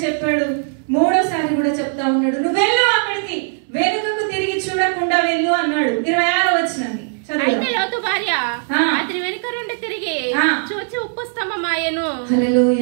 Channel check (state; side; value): silent; left; 66 dB below the other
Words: చెప్పాడు, 3వసారి కూడా చెప్తా ఉన్నాడు. నువ్వు వెళ్ళు అక్కడికి, వెనుకకు తిరిగి చూడకుండా వెళ్ళు అన్నాడు. 26వ వచనాన్ని అయితే లోతు భార్య అతని వెనుక నుండి తిరిగి చూచి ఉప్పు స్తంభమాయెను.